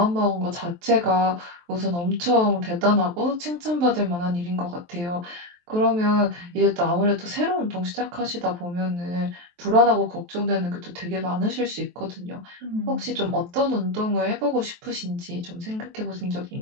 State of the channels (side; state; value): left; late; 23 ms